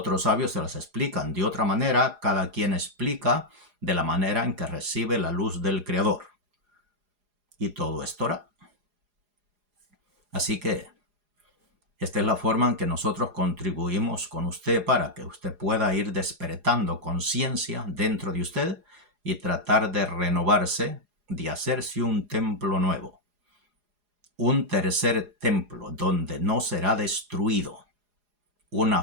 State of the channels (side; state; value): left; late; 4.8 ms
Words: sabios se las explican de otra manera, cada quien explica de la manera en que recibe la luz del Creador. Y todo es Torah. Así que esta es la forma en que nosotros contribuimos con usted para que usted pueda ir despertando conciencia dentro de usted y tratar de renovarse, de hacerse un templo nuevo. Un tercer templo donde no será destruido. Una